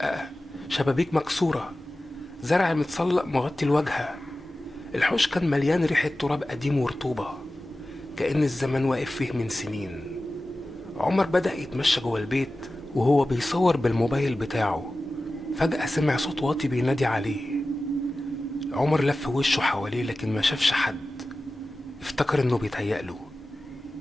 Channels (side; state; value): both; normal; correlation 0.95